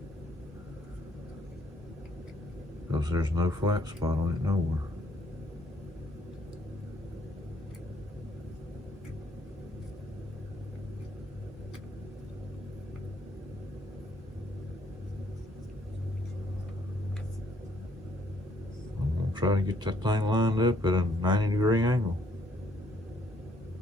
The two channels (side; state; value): both; normal; correlation 0.67